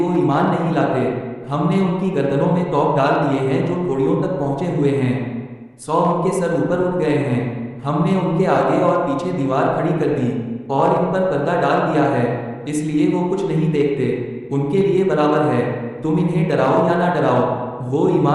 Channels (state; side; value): identical; both; correlation 1.00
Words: ایمان نہیں لاتے۔ ہم نے ان کی گردنوں میں توق ڈال دیے ہیں جو گھوڑیوں تک پہنچے ہوئے ہیں، 100 ان کے سر اوپر اٹھ گئے ہیں۔ ہم نے ان کے آگے اور پیچھے دیوار کھڑی کر دی اور ان پر پردہ ڈال دیا ہے، اس لیے وہ کچھ نہیں دیکھتے۔ ان کے لیے برابر ہے، تم انہیں ڈراؤ یا نہ ڈراؤ، وہ